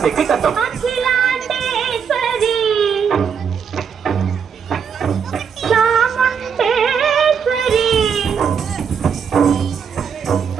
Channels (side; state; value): left; quieter; 6.9 dB